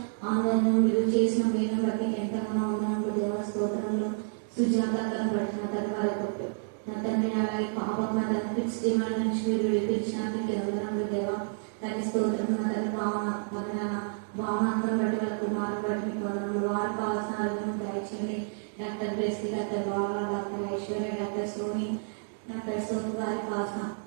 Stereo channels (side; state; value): left; silent; digital silence